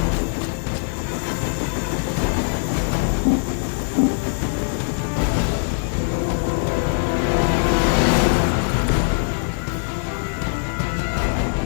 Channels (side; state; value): right; silent; digital silence